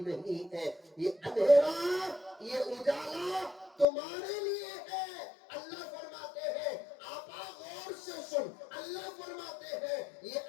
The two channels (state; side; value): drops out; right; at 3.9 s